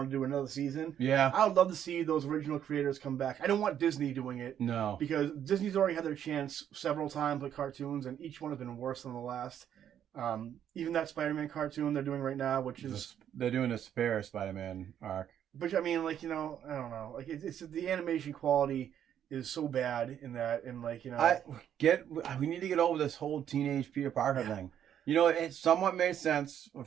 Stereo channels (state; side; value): quieter; left; 9.8 dB